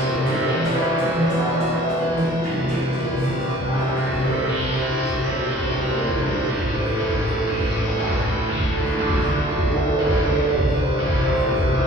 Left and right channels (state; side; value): normal; both; correlation 0.53